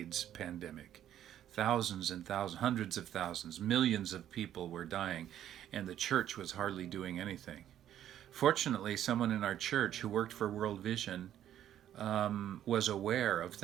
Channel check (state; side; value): quieter; left; 11.1 dB